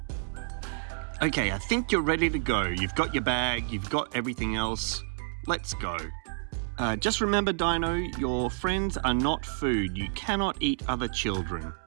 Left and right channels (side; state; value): left; silent; digital silence